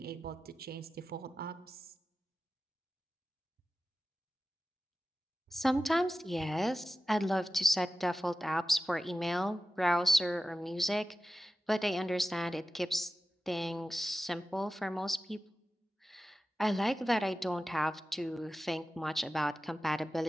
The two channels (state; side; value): normal; both; correlation 0.94